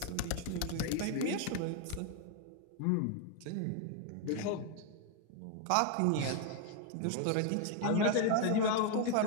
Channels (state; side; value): different; both; correlation 0.00